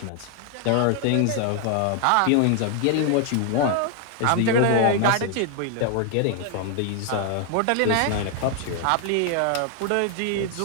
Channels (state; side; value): different; both; correlation 0.00